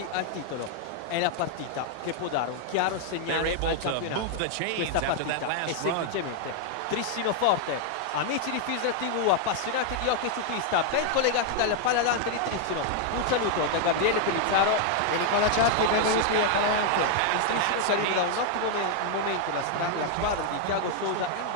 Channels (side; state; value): both; different; correlation 0.00